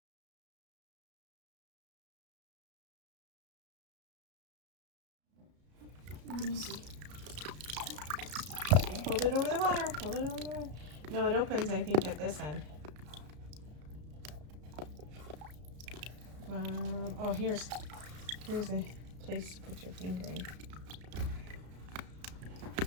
Let me see. Hold it over the water. Hold it over the water. No, it opens, I think, at this end. Oh, here's a place to put your finger in.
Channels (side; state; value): left; late; 33 ms